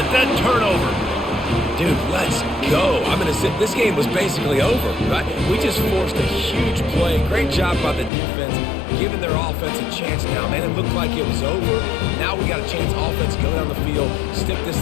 that turnover. Dude, let's go. I'm going to say this game was basically over, right? We just forced a huge play. Great job by the defense, giving their offense a chance now. Man, it looked like it was over. Now we got a chance. Offense, go down the field, stick this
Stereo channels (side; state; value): right; drops out; at 8.1 s